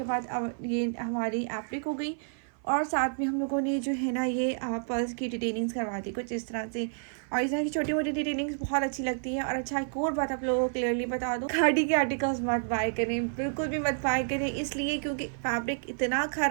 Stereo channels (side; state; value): left; silent; 58 dB below the other